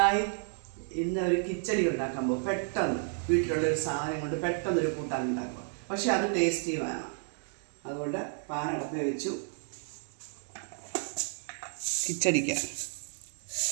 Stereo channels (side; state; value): left; silent; 57 dB below the other